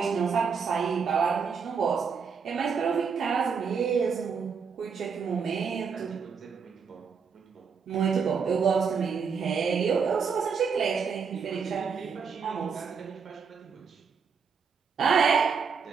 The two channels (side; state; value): left; quieter; 6.0 dB